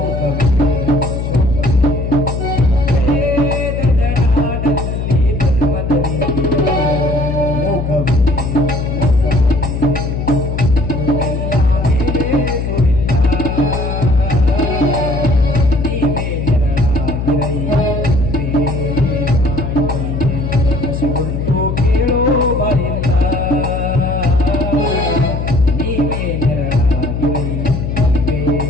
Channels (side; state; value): left; noise; hum, 2 dB below the sound